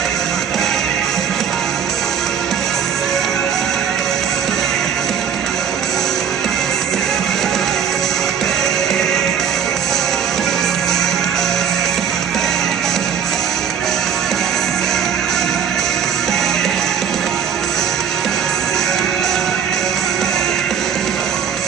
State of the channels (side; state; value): left; quieter; 7.8 dB